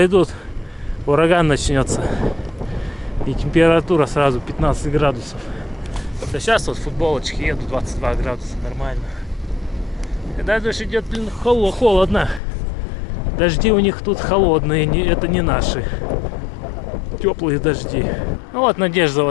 ураган начнется, и температура сразу 15 градусов. Да сейчас вот в футболочке еду, 22 градуса, нормально. Когда дождь идет, блин, холодно. Дожди у них тут холодные, это не наши. Теплые дожди. Ну вот надежда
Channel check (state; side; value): drops out; right; at 12.4 s